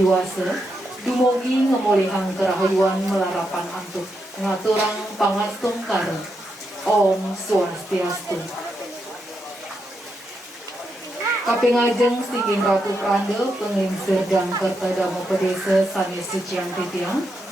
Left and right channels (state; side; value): normal; both; correlation 0.83